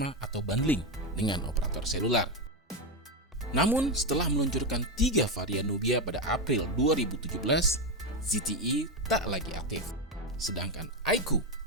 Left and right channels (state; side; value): normal; both; correlation 0.10